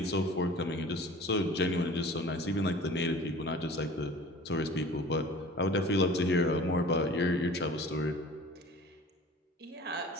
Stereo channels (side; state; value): both; normal; correlation 0.43